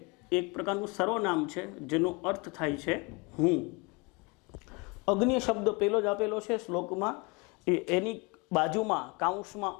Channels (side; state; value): right; quieter; 28.3 dB